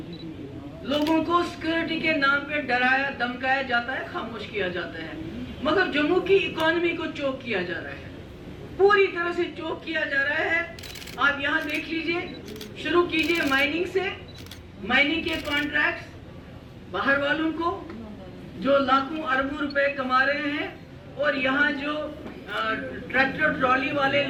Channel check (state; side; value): identical; both; correlation 1.00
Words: लोगों को सिक्योरिटी के नाम पे डराया धमकाया जाता है, खामोश किया जाता है, मगर जम्मू की इकोनॉमी को चोक किया जा रहा है, पूरी तरह से चोक किया जा रहा है। आप यहाँ देख लीजिए, शुरू कीजिए माइनिंग से, माइनिंग के कॉन्ट्रैक्ट्स बाहर वालों को जो लाखों अरबों रुपए कमा रहे हैं, और यहाँ जो ट्रैक्टर ट्रॉली वाले